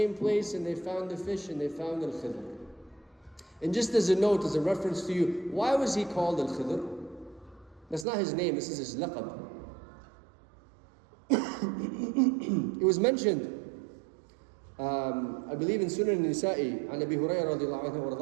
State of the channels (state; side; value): drops out; left; at 8.1 s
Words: place and they found the fish and they found Al-Khidr. And just as a note, as a reference to you, why was he called Al-Khidr? That's not his name, this is his laqab. It was mentioned, I believe in Sunan Nisa'i, عن أبي هريرة رضي الله عنه